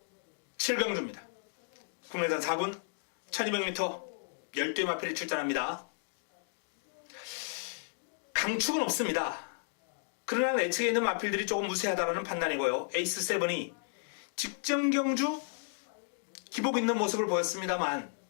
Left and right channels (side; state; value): right; silent; digital silence